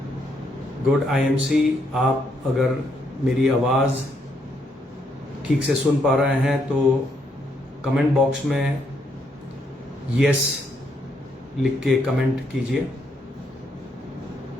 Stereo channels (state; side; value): normal; both; correlation 0.74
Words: Good IMC. आप अगर मेरी आवाज़ ठीक से सुन पा रहे हैं तो कमेंट बॉक्स में यस लिख के कमेंट कीजिए।